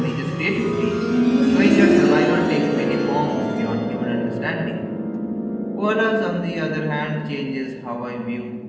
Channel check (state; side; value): identical; both; correlation 1.00